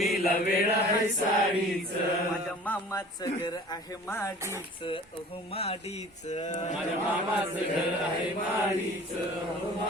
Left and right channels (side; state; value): both; normal; correlation 0.45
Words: लवेड आहे साडीच. माझ्या मामाचं घर आहे माडीच, अहो माडीच. माझ्या मामाचं घर आहे माडीच, अहो